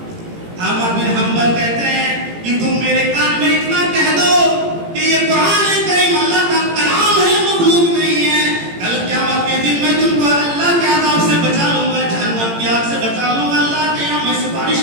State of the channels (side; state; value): left; late; 18 ms